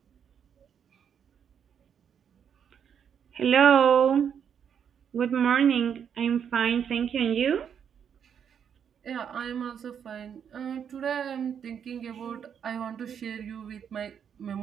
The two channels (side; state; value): left; quieter; 8.0 dB